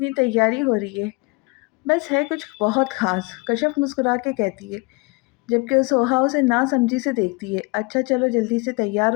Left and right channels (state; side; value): quieter; right; 28.0 dB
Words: तैयारी हो रही है। बस है कुछ बहुत ख़ास, कश्यप मुस्कुरा के कहती है, जबकि वो सोहा उसे नासमझी से देखती है। अच्छा चलो जल्दी से तैयार